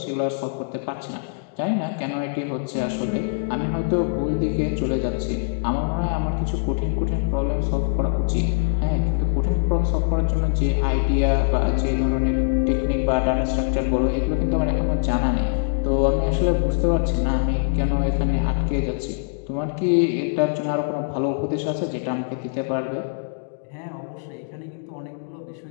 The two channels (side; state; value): right; silent; digital silence